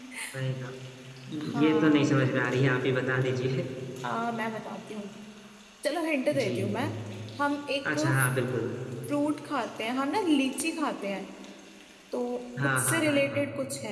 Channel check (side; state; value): both; identical; correlation 1.00